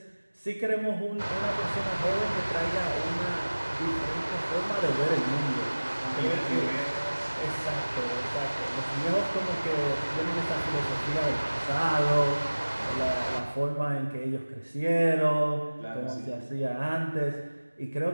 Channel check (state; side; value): inverted; both; correlation -1.00